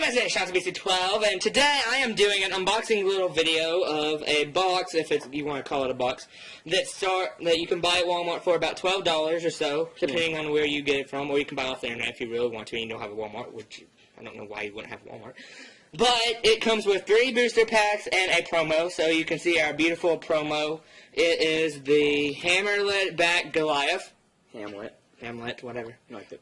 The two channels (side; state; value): both; identical; correlation 1.00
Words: name is BC12, and today I am doing an unboxing little video of a box, if you want to call it a box, that you can buy at Walmart for about $12 or so, depending on where you get it from, or you can buy off the internet if you really want to and you don't have a Walmart, which I don't know why you wouldn't have a Walmart. But it comes with 3 booster packs and a promo, so you can see our beautiful promo. It is the Hammerlet back Goliath. Hamlet, whatever. You like the